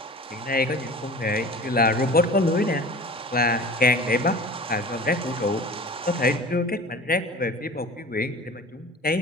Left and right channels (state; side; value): normal; both; correlation 0.40